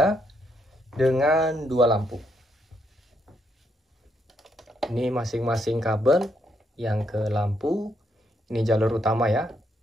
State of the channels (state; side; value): normal; both; correlation 0.76